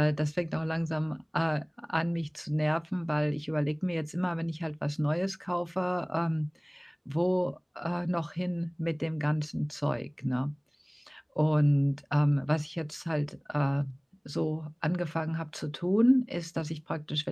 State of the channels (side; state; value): both; identical; correlation 1.00